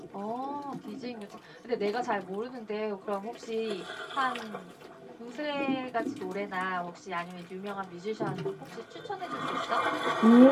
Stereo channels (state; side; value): identical; both; correlation 1.00